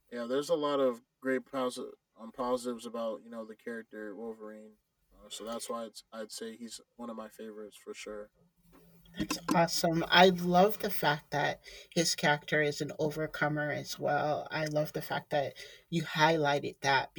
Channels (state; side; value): identical; both; correlation 1.00